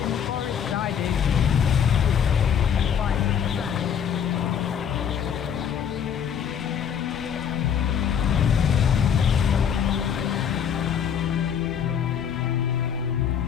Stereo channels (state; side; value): quieter; right; 8.1 dB